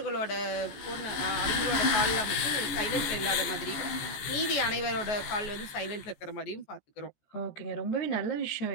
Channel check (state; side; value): late; right; 14 ms